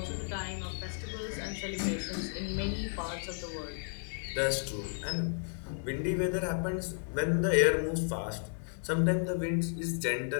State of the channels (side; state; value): right; silent; 56 dB below the other